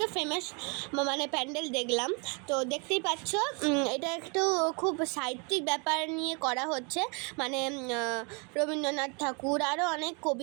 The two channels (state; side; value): quieter; left; 33.4 dB